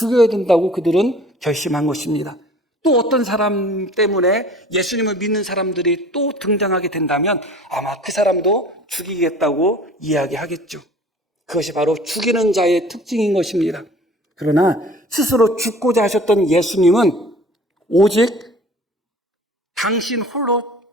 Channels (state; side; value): normal; both; correlation 0.47